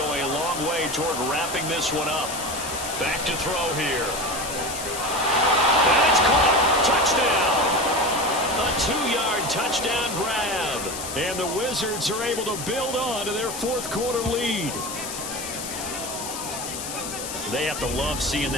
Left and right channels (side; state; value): left; noise; hiss, 7 dB below the sound